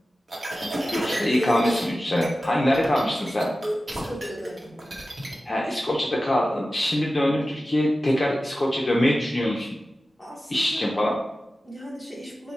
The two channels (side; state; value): both; normal; correlation 0.95